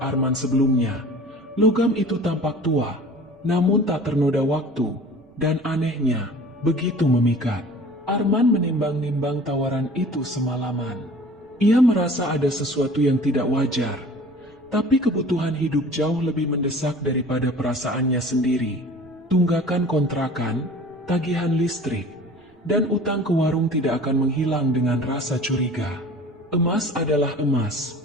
Arman sebelumnya. Logam itu tampak tua, namun tak ternoda waktu, dan anehnya, begitu memikat. Arman menimbang-nimbang tawaran itu semalaman. Ia merasa ada sesuatu yang tidak wajar, tapi kebutuhan hidup jauh lebih mendesak daripada perasaannya sendiri. Tunggakan kontrakan, tagihan listrik, dan utang ke warung tidak akan menghilang dengan rasa curiga. Emas adalah emas,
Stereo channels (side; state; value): both; normal; correlation 0.44